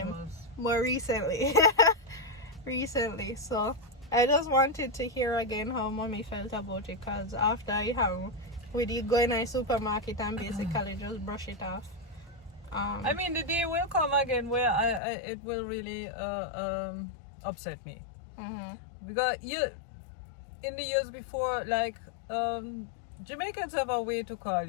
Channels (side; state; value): right; drops out; at 15.0 s